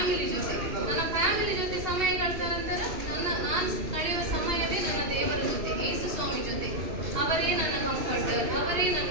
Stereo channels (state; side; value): late; left; 2.6 ms